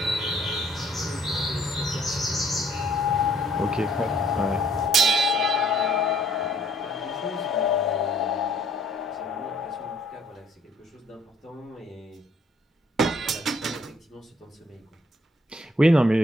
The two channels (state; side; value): normal; both; correlation 0.63